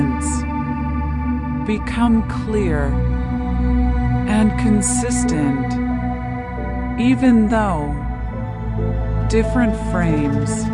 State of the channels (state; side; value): identical; both; correlation 1.00